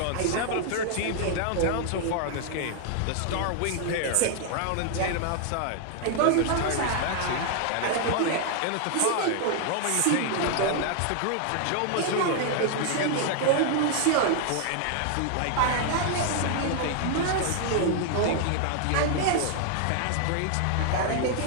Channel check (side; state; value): both; different; correlation 0.00